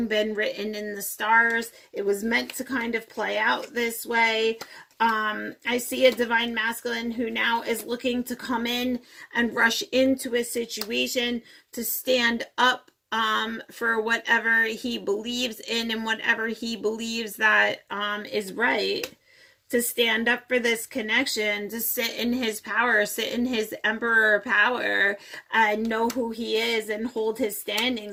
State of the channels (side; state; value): both; identical; correlation 1.00